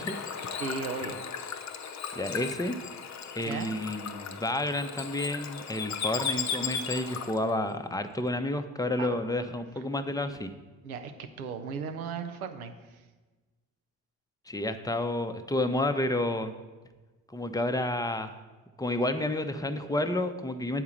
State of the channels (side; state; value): both; normal; correlation 0.46